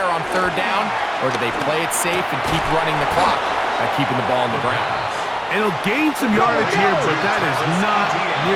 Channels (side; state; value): both; identical; correlation 1.00